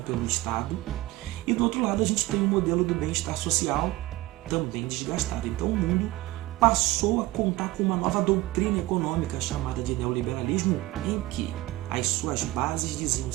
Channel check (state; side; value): quieter; left; 18.5 dB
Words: pelo Estado. E do outro lado a gente tem o modelo do bem-estar social também desgastado. Então o mundo passou a contar com uma nova doutrina econômica chamada de neoliberalismo, em que as suas bases diziam o